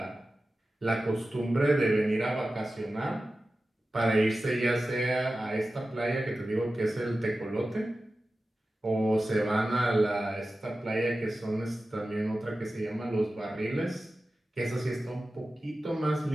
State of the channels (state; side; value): normal; both; correlation 0.94